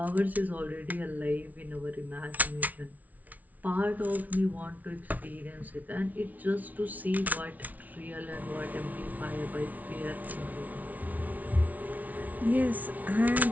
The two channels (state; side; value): late; left; 0.074 ms